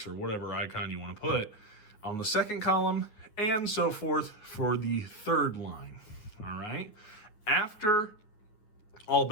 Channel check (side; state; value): right; late; 9.5 ms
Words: or whatever icon you want to put on the second column, and so forth for the third line. All right. After all